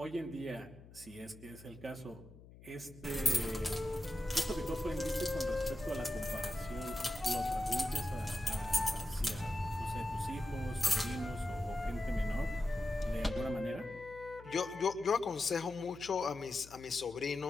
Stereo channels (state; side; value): noise; left; hum, 19 dB below the sound